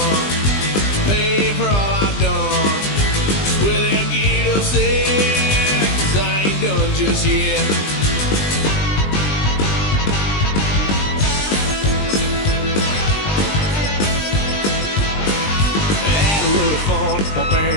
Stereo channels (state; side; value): late; right; 20 ms